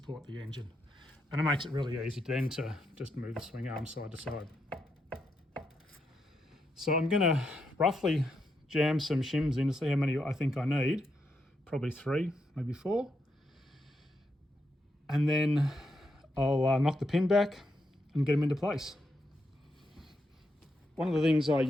the engine. And it makes it really easy then to just move the swing arm side to side. So I'm going to roughly jam some shims in to see how many I think I need. Probably 3, maybe 4. And then I'll knock the pin back and get them into place. One of the things I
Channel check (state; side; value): normal; both; correlation 0.82